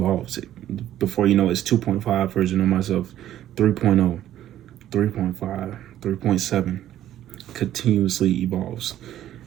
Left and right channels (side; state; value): left; quieter; 12.2 dB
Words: Before you know, it's 2.5 version of myself, 3.0, 3.5, 3.7, continuously evolves.